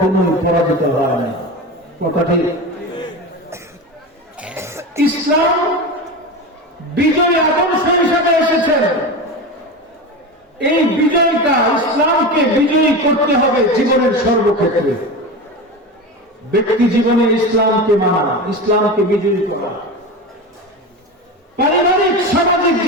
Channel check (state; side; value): normal; both; correlation 0.24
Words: পরাজিত হয় না, কথা ঠিক? ইসলাম বিজয় আদর্শ হিসাবে এসেছেন। এই বিজয়টা, ইসলামকে বিজয়ী করতে হবে জীবনের সর্বক্ষেত্রে। ব্যক্তি জীবনে ইসলামকে মানা, ইসলামকে বিজয়ী করা, পারিবারিক সামাজিক